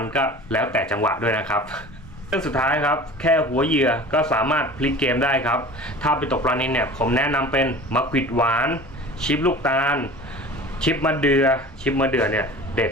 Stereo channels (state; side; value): normal; both; correlation 0.40